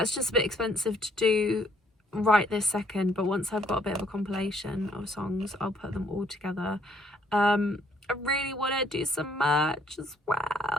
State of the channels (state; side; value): normal; both; correlation 0.66